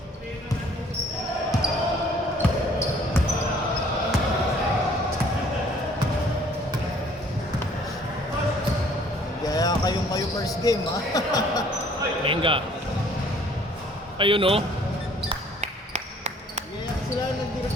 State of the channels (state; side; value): normal; both; correlation 0.57